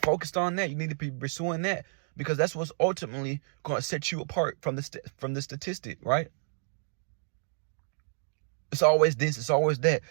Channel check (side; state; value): left; silent; digital silence